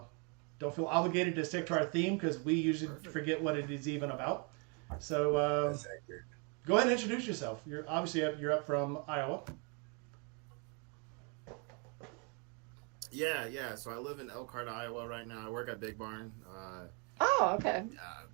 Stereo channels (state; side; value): quieter; left; 35.1 dB